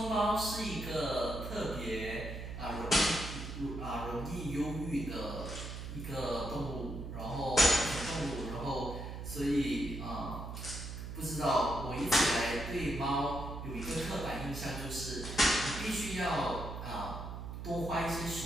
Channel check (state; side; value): noise; right; hum, 7 dB below the sound